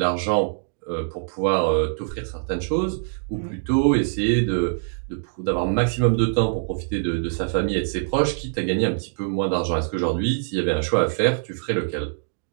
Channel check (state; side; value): silent; left; digital silence